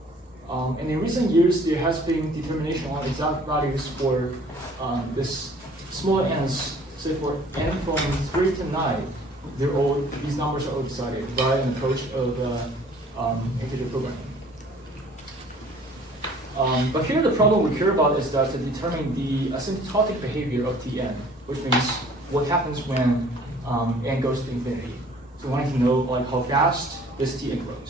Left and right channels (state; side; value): normal; both; correlation 0.53